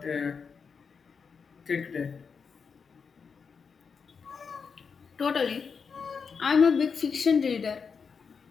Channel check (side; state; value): right; quieter; 5.7 dB